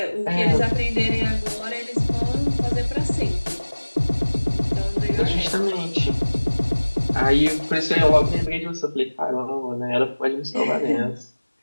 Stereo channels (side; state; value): both; inverted; correlation -1.00